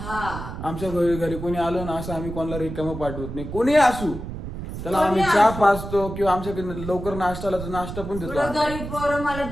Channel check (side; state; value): right; noise; rumble, 8 dB below the sound